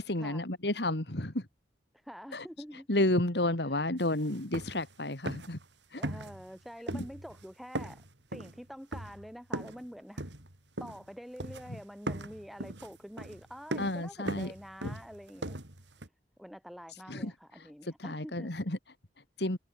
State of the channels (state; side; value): normal; both; correlation 0.31